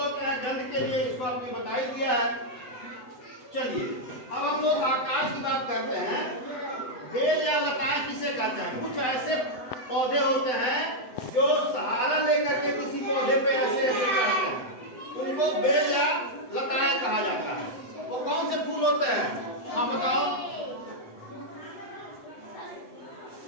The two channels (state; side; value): late; right; 7.9 ms